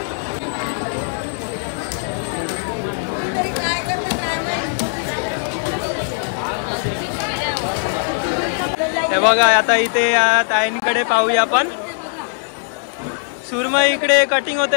हे बघा आता इथे या ताईंकडे पाहूया आपण. सुरमई इकडे कटिंग होत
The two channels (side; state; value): right; silent; digital silence